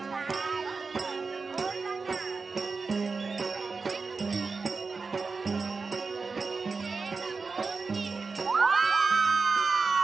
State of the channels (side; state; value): left; quieter; 4.5 dB